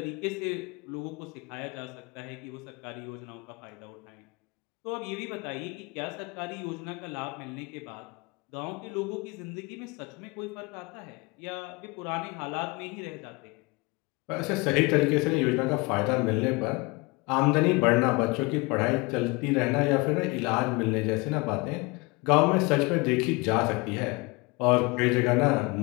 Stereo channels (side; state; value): right; quieter; 26.0 dB